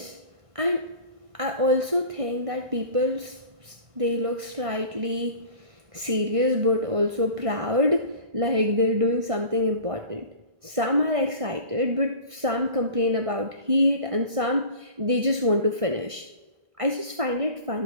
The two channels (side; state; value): left; late; 1.5 ms